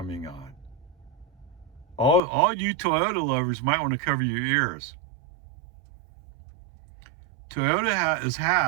on. All you Toyota lovers might want to cover your ears. Toyota has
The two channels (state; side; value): drops out; left; at 2.2 s